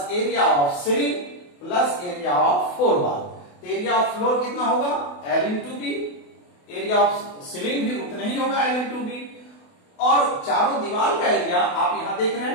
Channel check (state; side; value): late; right; 28 ms